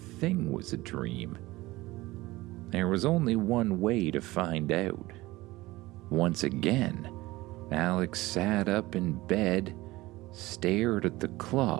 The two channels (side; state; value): left; quieter; 19.3 dB